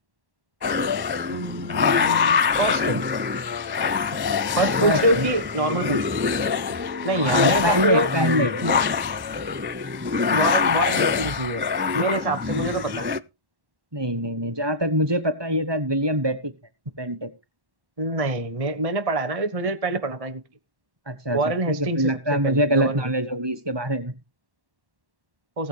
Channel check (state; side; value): late; left; 1.1 ms